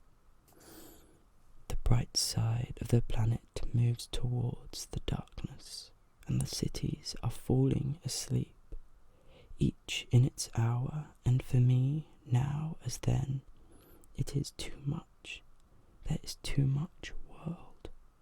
The bright side of the planet moves towards the darkness, and the cities are falling asleep, each in its hour, and for me, now as then, it is too much. There is too much world.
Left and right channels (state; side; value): identical; both; correlation 1.00